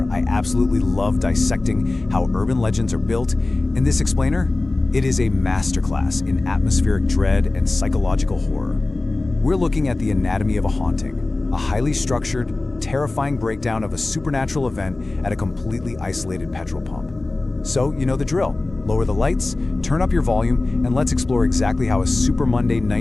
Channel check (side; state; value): right; quieter; 3.1 dB